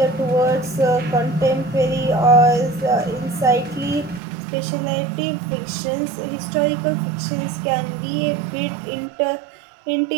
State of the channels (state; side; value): drops out; left; at 4.2 s